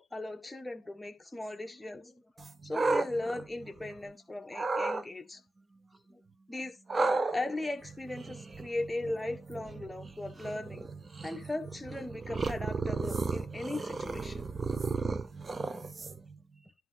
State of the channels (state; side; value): normal; both; correlation 0.91